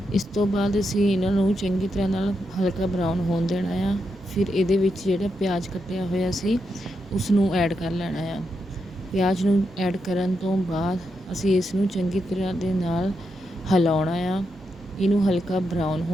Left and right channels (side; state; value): both; normal; correlation 0.84